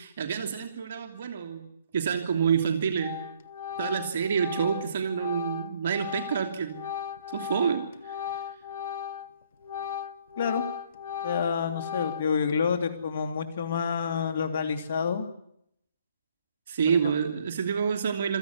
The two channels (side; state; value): both; inverted; correlation -0.64